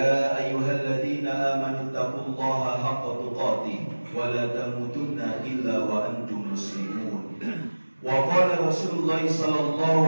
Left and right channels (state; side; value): inverted; both; correlation -1.00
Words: أيها الذين آمنوا اتقوا الله حق تقاته ولا تموتن إلا وأنتم مسلمون وقال رسول الله صلى